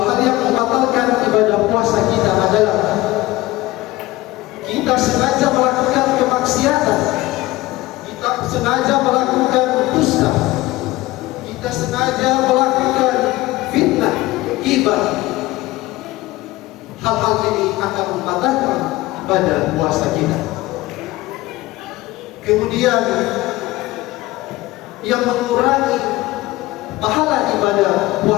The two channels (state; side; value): quieter; right; 18.5 dB